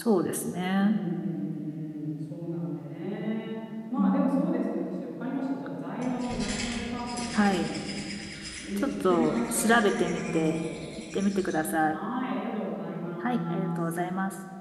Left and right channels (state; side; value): identical; both; correlation 1.00